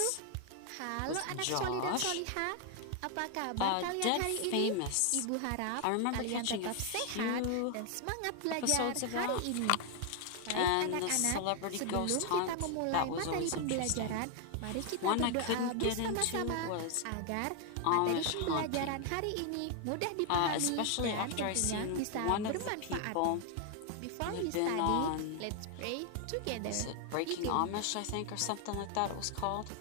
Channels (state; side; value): different; both; correlation 0.00